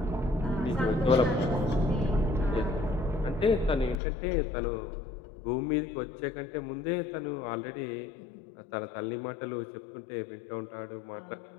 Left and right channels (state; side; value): drops out; right; at 4.0 s